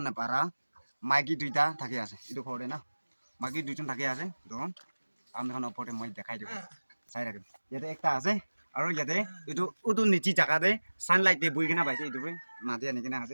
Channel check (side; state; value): both; inverted; correlation -1.00